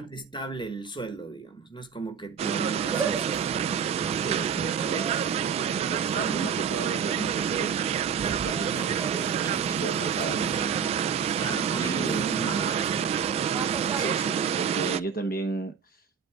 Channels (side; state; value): left; quieter; 6.9 dB